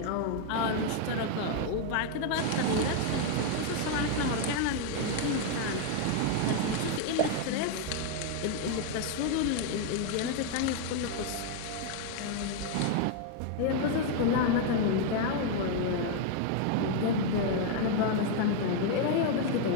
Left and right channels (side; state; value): both; different; correlation 0.00